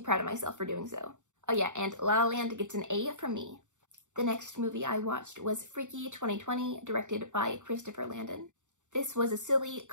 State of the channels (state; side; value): late; left; 0.85 ms